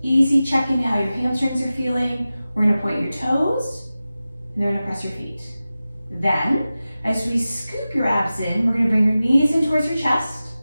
easy check-in how your hamstrings are feeling. We're going to point your toes, and then we're going to press your feet. Then, as we scoop your abs in, we're going to bring your knees in towards your chest,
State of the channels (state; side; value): inverted; both; correlation -0.95